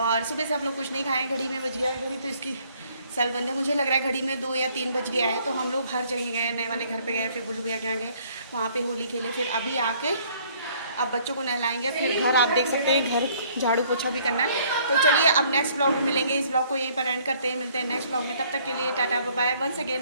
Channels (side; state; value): both; inverted; correlation -0.61